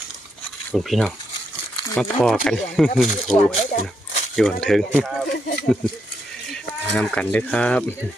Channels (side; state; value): both; normal; correlation 0.79